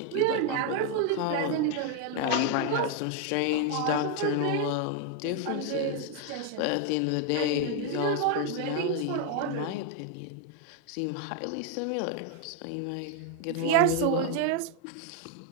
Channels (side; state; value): both; different; correlation 0.01